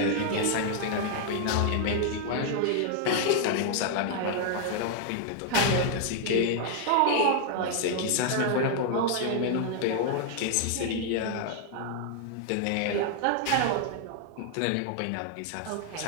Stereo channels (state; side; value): different; both; correlation 0.00